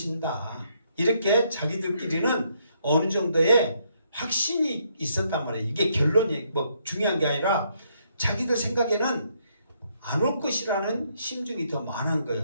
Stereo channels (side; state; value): both; inverted; correlation -0.73